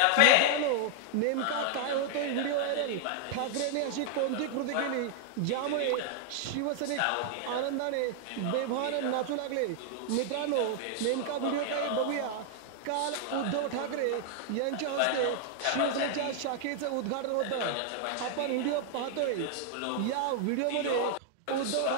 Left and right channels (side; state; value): both; different; correlation 0.00